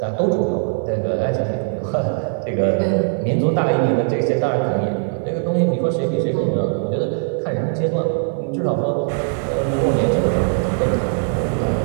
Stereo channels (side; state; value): left; silent; 55 dB below the other